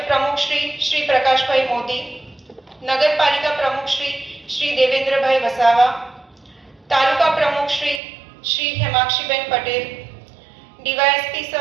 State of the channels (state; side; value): drops out; left; at 8.0 s